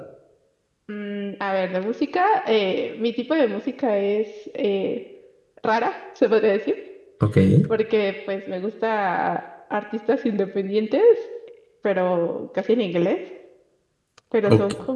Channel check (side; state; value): both; identical; correlation 1.00